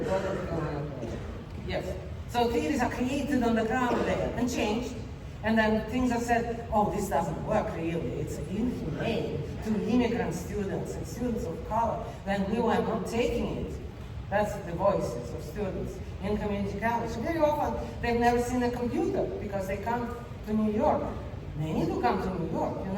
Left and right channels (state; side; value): identical; both; correlation 1.00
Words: a broader decolonial project. Yes. So theories are created on the ground there and changed. And then things are said, oh, this doesn't work really. It's inhumane to immigrant students and students of color. Then we were not taking it. That's the voices of students in community college. Very often, they've never seen a computer because they come to New York. Many do come to New York, you